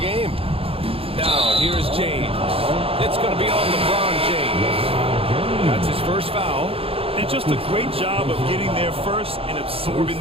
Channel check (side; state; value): left; late; 0.27 ms